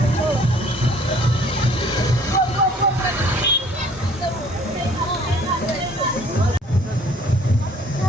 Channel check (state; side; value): normal; both; correlation 0.56